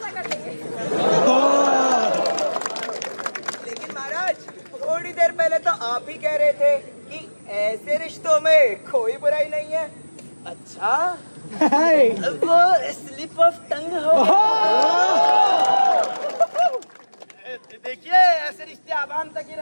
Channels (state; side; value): inverted; both; correlation -1.00